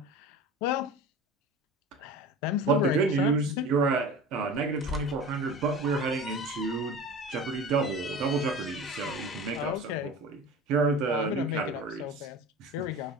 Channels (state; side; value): normal; both; correlation 0.35